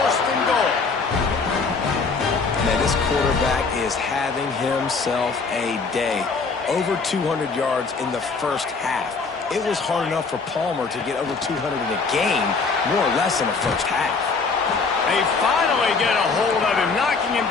and goal. Man, this quarterback is having himself a day. Over 200 yards in the first half. It was hard enough for Palmer to get over 200 in a game, more or less in the first half. They finally get a hold of him, knocking him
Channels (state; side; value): quieter; right; 4.5 dB